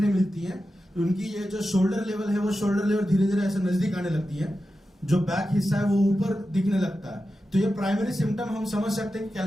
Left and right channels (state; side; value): normal; both; correlation 0.91